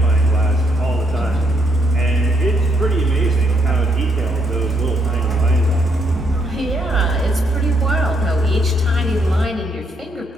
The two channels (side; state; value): both; normal; correlation 0.74